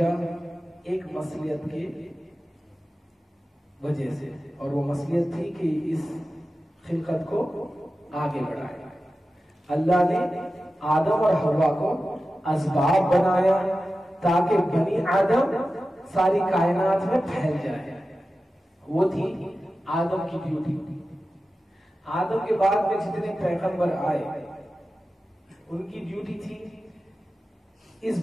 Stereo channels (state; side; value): normal; both; correlation 0.94